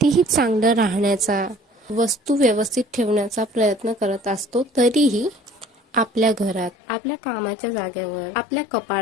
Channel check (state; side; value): drops out; right; at 6.7 s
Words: चांगलं राहण्याचा, वस्तू व्यवस्थित ठेवण्याचा प्रयत्न करत असतो, तरीही आपल्या घरात, आपल्या कामाच्या जागेवर, आपल्या